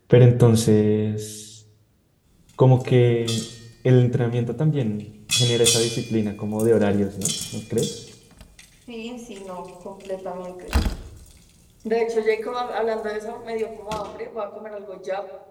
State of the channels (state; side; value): identical; both; correlation 1.00